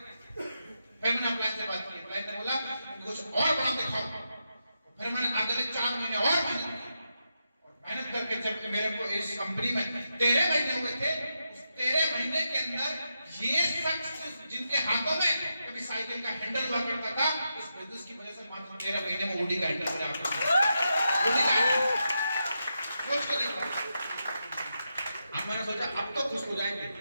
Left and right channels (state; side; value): inverted; both; correlation -0.86